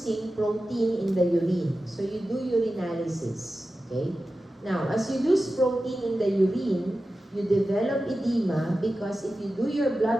protein in the urine. So you do urinalysis. Okay? Now, as you lose protein in the urine, you develop edema because if you do your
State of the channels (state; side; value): normal; both; correlation 0.93